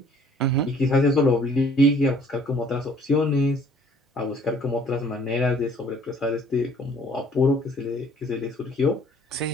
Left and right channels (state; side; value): normal; both; correlation 0.57